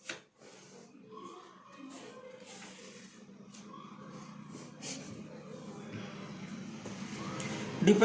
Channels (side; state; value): both; identical; correlation 1.00